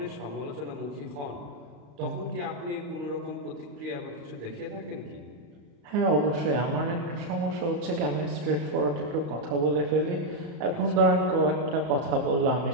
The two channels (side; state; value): left; late; 35 ms